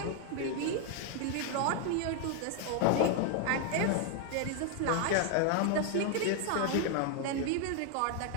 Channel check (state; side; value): different; both; correlation 0.00